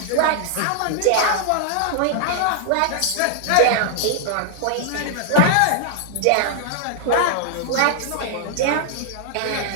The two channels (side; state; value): both; different; correlation -0.01